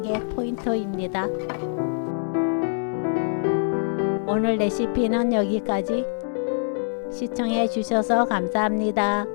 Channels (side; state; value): right; silent; digital silence